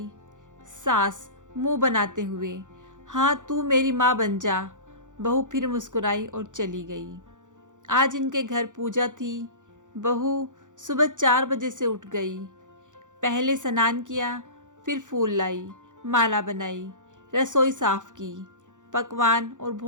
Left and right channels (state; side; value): late; left; 0.86 ms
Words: सास मुंह बनाते हुए, हाँ तू मेरी माँ बन जा। बहू फिर मुस्कुराई और चली गई। आज इनके घर पूजा थी। बहू सुबह 4 बजे से उठ गई। पहले स्नान किया, फिर फूल लाई, माला बनाई, रसोई साफ की, पकवान और